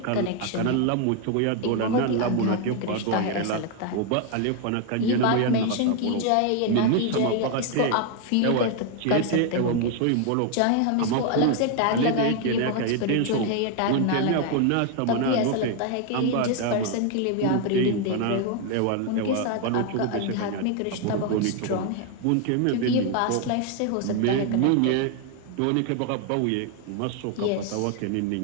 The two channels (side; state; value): both; different; correlation 0.01